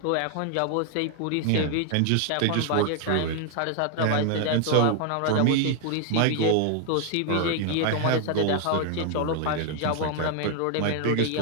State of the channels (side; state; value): both; different; correlation 0.00